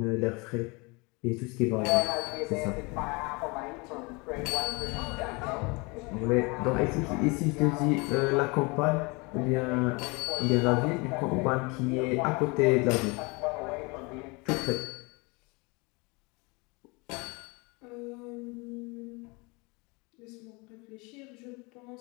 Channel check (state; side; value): quieter; right; 27.9 dB